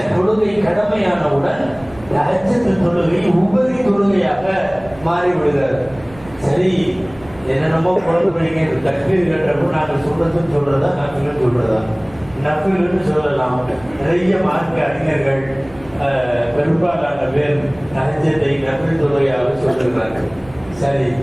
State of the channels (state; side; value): noise; right; rumble, 22 dB below the sound